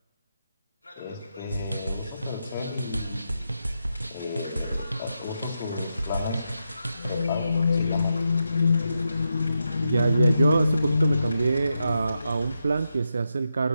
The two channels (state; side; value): inverted; both; correlation -0.86